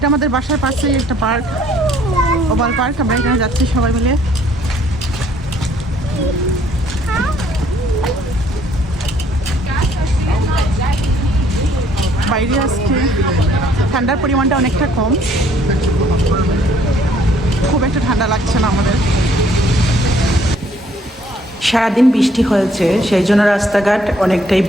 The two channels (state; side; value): normal; both; correlation 0.63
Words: আমাদের বাসার পাশেই একটা পার্ক, ওভাল পার্ক। আমরা এখানে যাচ্ছি সবাই মিলে। বাইরে আজকে ঠান্ডার পরিমাণটা অনেকটা কম, খুব একটা ঠান্ডা লাগছে না আমাদের। সারাদিন বৃষ্টি হয়েছে, সেই জন্য রাস্তাঘাট অনেকটাই